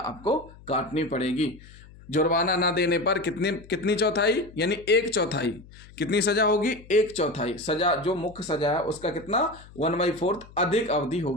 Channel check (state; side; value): noise; left; hum, 21 dB below the sound